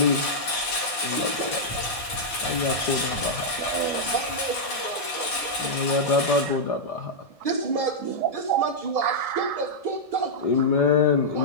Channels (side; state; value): right; late; 1.7 ms